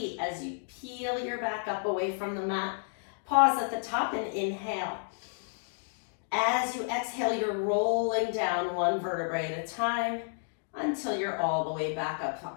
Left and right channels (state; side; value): silent; right; digital silence